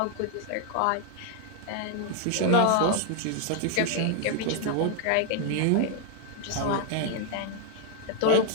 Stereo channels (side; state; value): both; different; correlation 0.00